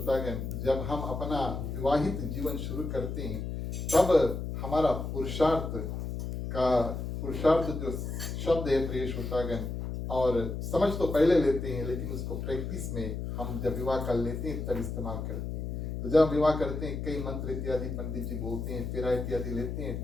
जब हम अपना विवाहित जीवन शुरू करते हैं तब हमारा पुरुषार्थ जो शब्द है प्रिय श्रोतागण, और समझ तो पहले लेते हैं लेकिन उसको प्रैक्टिस में हम जब विवाह कर लेते हैं तब इस्तेमाल करते हैं। तो जब विवाह करते हैं कई मंत्र इत्यादि पंडित जी बोलते हैं, फेरा इत्यादि लेते हैं,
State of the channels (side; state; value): left; noise; hum, 4 dB below the sound